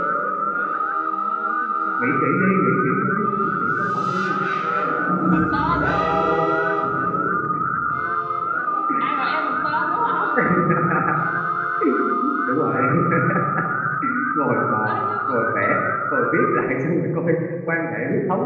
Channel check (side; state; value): both; identical; correlation 1.00